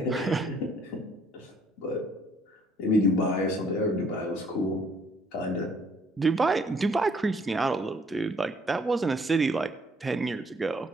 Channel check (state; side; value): normal; both; correlation 0.63